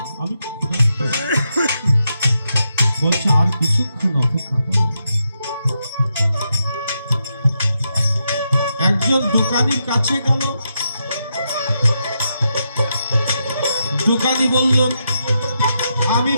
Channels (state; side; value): inverted; both; correlation -0.83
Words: আমি বলছে, আর কিছুক্ষণ অপেক্ষা করো। একজন দোকানির কাছে গেল। দোকানি বলল, আমি